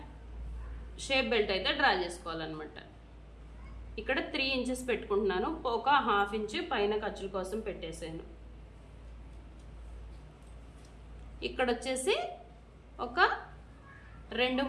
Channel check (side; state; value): both; identical; correlation 1.00